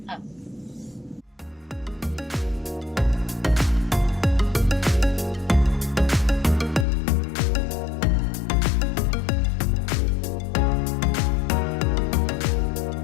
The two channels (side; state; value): right; drops out; at 6.9 s